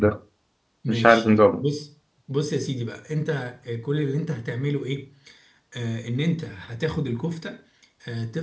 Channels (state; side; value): identical; both; correlation 1.00